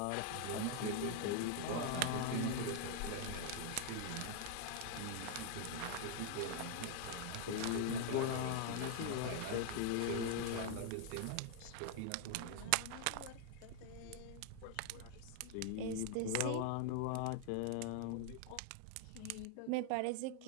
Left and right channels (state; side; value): different; both; correlation 0.00